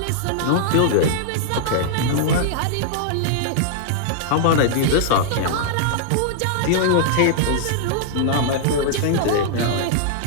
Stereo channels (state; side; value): different; both; correlation -0.01